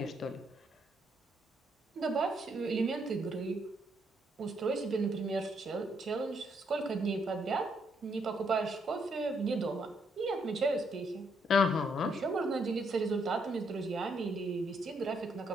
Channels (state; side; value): normal; both; correlation 0.74